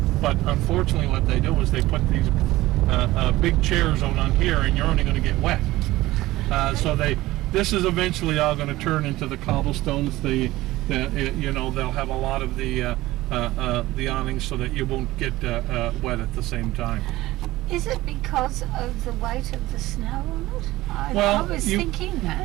unfortunately what they do is they put these big chairs out on here, and you're only going to get wet. So this is eventually all going to turn into the cobblestones. They'll have a lot of the awnings so that you won't get wet at the same time. Is it because of the weight of the snow on it? I was thinking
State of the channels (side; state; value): left; quieter; 17.6 dB